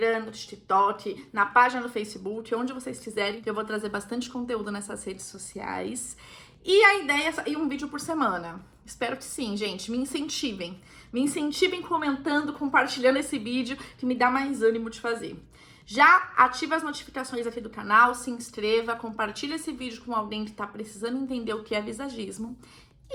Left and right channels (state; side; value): identical; both; correlation 1.00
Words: no TikTok, na página do Facebook, onde vocês quiserem, que eu vou trazer bastante conteúdo nessas redes sociais. E a ideia é sair um vídeo por semana. Espero que sim, gente. Me incentivem. Me incentivem comentando, compartilhando esse vídeo, que me dá mais ânimo de fazer. Já ativa as notificações aqui do canal, se inscreva, compartilha esse vídeo com alguém que tá precisando entender o que é visagismo.